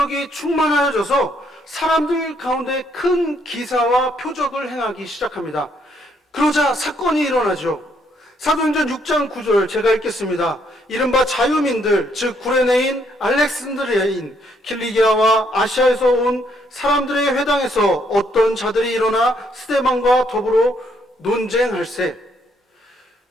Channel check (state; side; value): normal; both; correlation 0.71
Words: 충만하여져서 사람들 가운데 큰 기사와 표적을 행하기 시작합니다. 그러자 사건이 일어나죠. 사도행전 6장 9절 제가 읽겠습니다. 이른바 자유민들, 즉 구레네인, 알렉산드리아인, 킬리기아와 아시아에서 온 사람들의 회당에서 어떤 자들이 일어나 스데반과 더불어 논쟁할세.